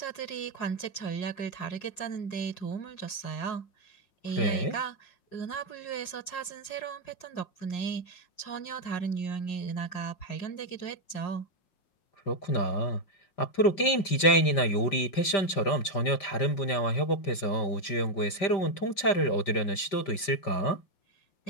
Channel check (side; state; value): right; late; 5.6 ms